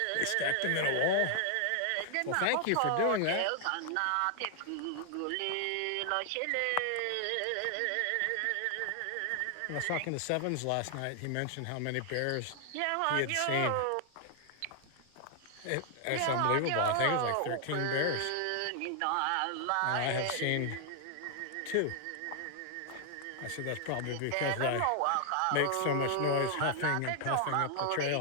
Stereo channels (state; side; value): different; both; correlation 0.00